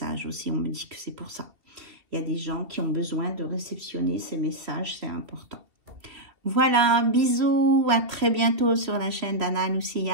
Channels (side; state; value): left; late; 3.0 ms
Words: aussi. On me dit que c'est pour ça. Il y a des gens qui ont besoin de réceptionner ces messages, c'est important. Voilà, bisous, à très bientôt sur la chaîne d'Anna